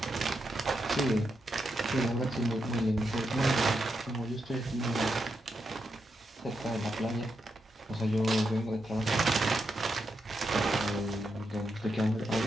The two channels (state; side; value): normal; both; correlation 0.84